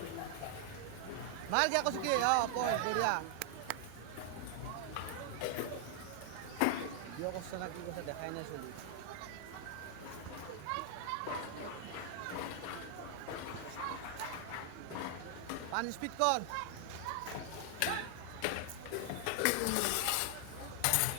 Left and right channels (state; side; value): different; both; correlation 0.00